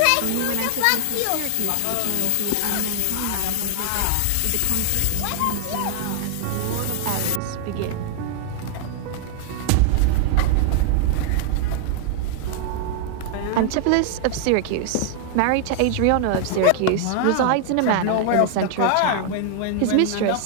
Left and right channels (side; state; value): both; different; correlation 0.00